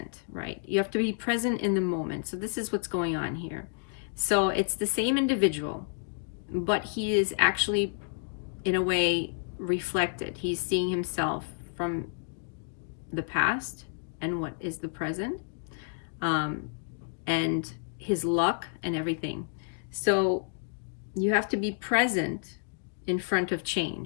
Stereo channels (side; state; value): right; silent; digital silence